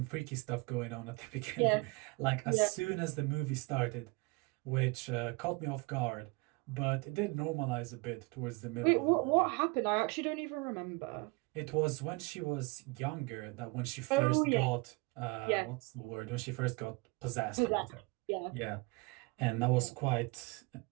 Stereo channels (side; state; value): left; quieter; 27.1 dB